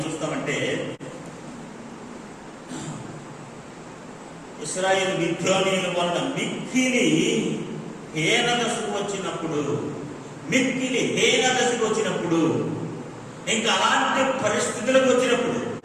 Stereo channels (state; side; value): identical; both; correlation 1.00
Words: చూస్తామంటే, ఇశ్రాయేలు మిద్యానీయుల వలన మిక్కిలి హీన దశకు వచ్చినప్పుడు, ఇంకా అలాంటి పరిస్థితులకు వచ్చినప్పుడు,